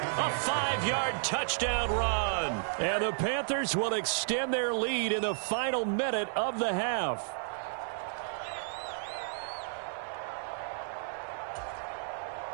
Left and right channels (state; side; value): silent; left; 56 dB below the other